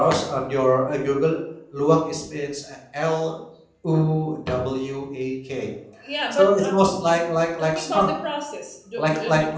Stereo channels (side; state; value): both; identical; correlation 1.00